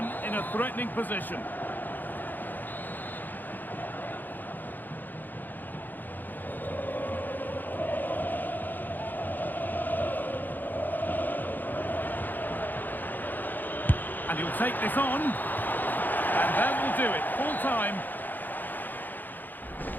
in a threatening position. And he'll take this on. And that will do it. Full time.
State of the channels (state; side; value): late; right; 0.087 ms